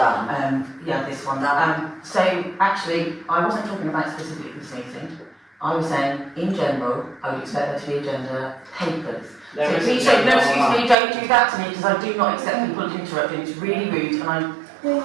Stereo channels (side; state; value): left; drops out; at 11.0 s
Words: Yeah, this one. So actually, I wasn't talking about specifically this meeting. I was saying, in general, I would expect there to be agenda papers. So please don't, no, excuse me, don't do that to me, because I do not accept people interrupting. It's really rude, and